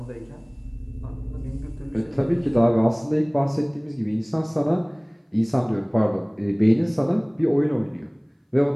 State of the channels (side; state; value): both; identical; correlation 1.00